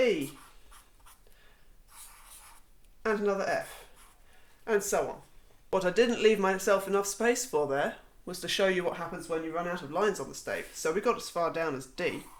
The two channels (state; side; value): identical; both; correlation 1.00